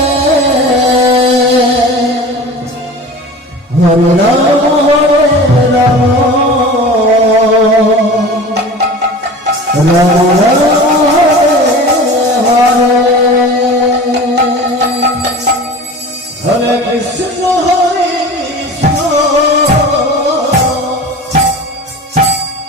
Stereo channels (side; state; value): both; normal; correlation 0.36